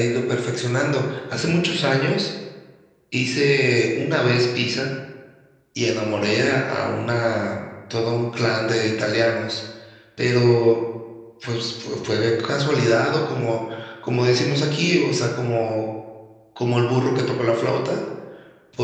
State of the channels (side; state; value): both; identical; correlation 1.00